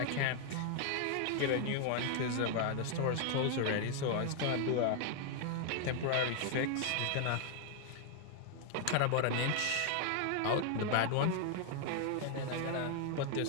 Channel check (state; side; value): different; both; correlation 0.00